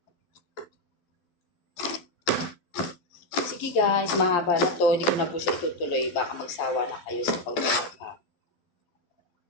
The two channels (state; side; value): late; right; 12 ms